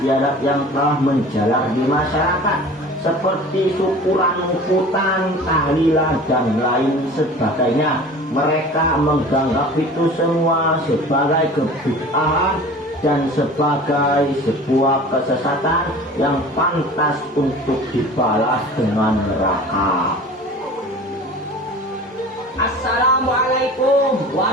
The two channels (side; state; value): both; normal; correlation 0.41